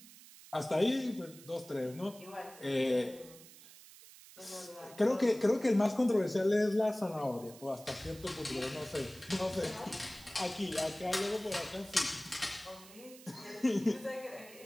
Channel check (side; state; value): right; noise; hiss, 19 dB below the sound